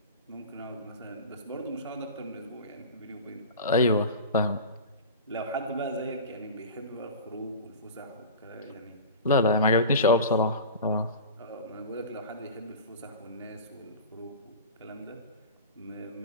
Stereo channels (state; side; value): inverted; both; correlation -0.33